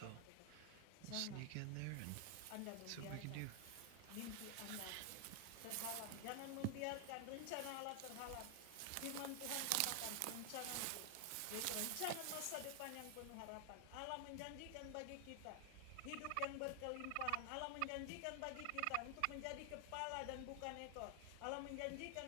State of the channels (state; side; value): different; both; correlation 0.00